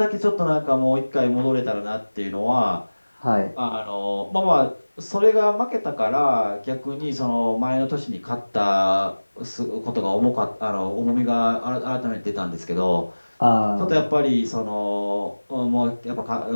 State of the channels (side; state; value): both; inverted; correlation -1.00